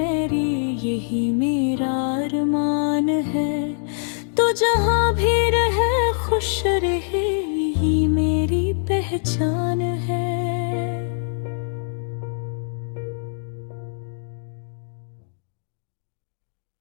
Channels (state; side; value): silent; right; digital silence